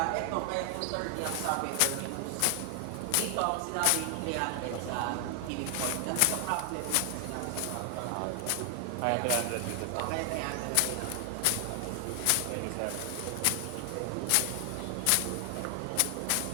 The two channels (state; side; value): different; both; correlation 0.00